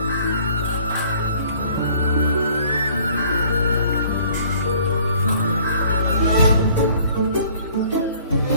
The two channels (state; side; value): inverted; both; correlation -0.56